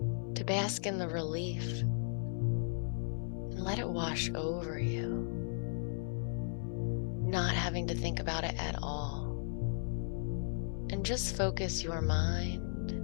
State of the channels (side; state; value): right; silent; 54 dB below the other